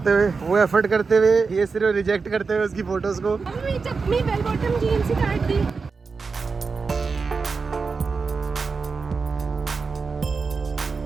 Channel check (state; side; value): quieter; left; 4.8 dB